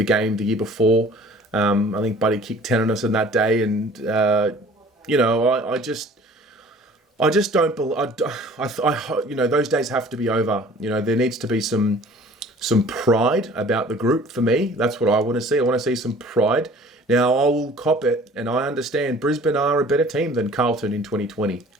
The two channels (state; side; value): normal; both; correlation 0.49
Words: game the year before. I think Buddy kicked 10 on us in that day, and I just don't believe. Those days have to be over. There needs to be some pride about the group for me. That's what I want to see. I want to see some pride. Now I will cop it, and I understand Brisbane are a better team than Carlton in 2020.